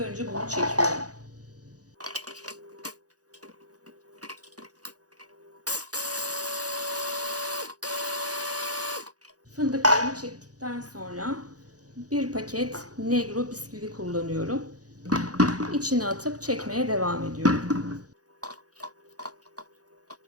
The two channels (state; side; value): late; left; 0.67 ms